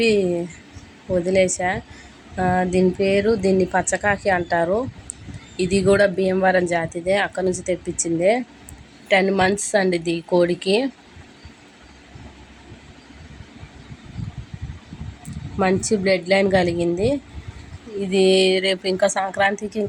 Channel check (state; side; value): identical; both; correlation 1.00